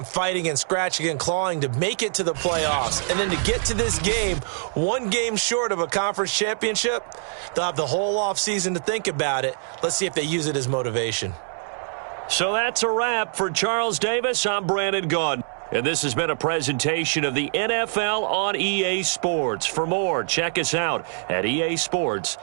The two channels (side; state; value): left; silent; digital silence